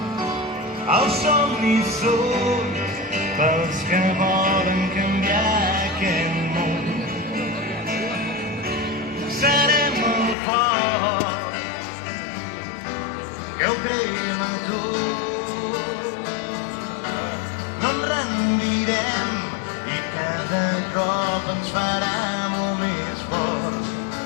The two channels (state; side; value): drops out; right; at 10.4 s